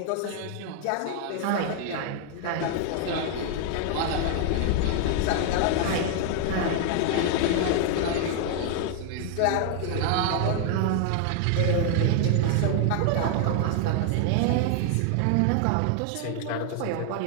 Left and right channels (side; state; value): both; different; correlation 0.00